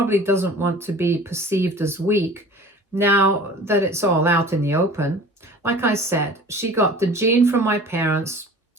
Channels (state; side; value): normal; both; correlation 0.42